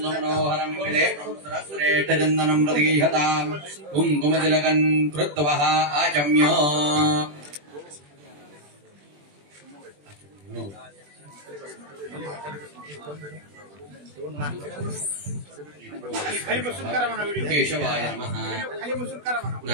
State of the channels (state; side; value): late; left; 20 ms